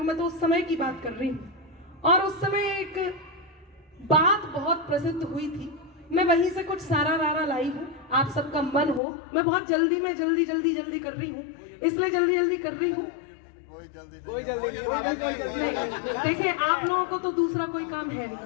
मैं तो उस समय की बात कर रही हूँ। और उस समय एक बात बहुत प्रसिद्ध हुई थी, मैं वहीं से कुछ सारा रारा लाई हूँ। आप सबका मन हो, मैं बहुत जल्दी में जल्दी कर रही हूँ, इसलिए जल्दी कर रही हूँ। कोई जल्दी नहीं। देखिए, आप लोगों को तो दूसरा कोई काम है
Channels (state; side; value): drops out; right; at 9.0 s